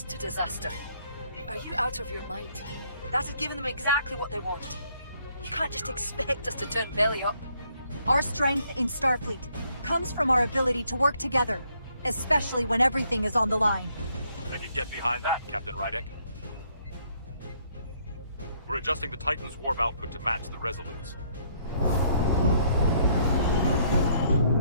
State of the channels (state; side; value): inverted; both; correlation -0.68